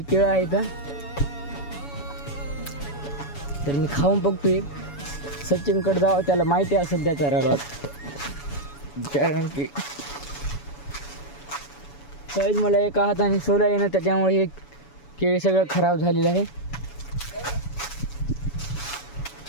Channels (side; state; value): right; late; 7.0 ms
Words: केळं आहेत. तर मी खाऊन बघतो एक. सचिनकडे जावं, त्याला माहिती असेल त्याचा रडत, कारण की सहज मला एका हाताने सोला येणं, त्याच्यामुळे हे केळी सगळं खराब झालेलं आहे.